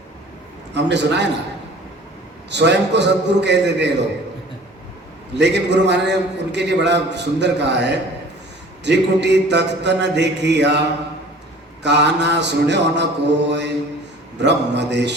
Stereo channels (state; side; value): normal; both; correlation 0.47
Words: हमने सुना है ना, स्वयं को सदगुरु कह देते हैं लोग, लेकिन गुरु महाराज ने उनके लिए बड़ा सुंदर कहा है, त्रिकुटी तख्त न देखिया, काना सुन्यो न कोय, ब्रह्म